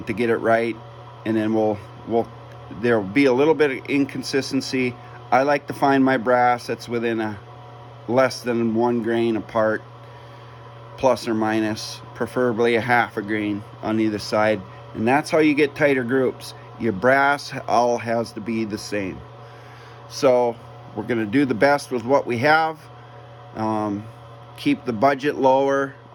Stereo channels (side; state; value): both; identical; correlation 1.00